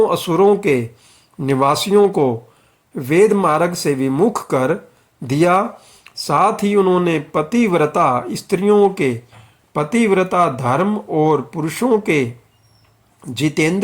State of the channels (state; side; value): identical; both; correlation 1.00